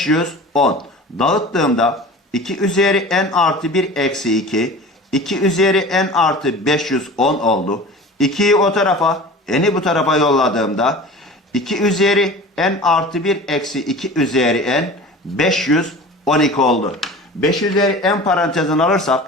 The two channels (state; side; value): normal; both; correlation 0.38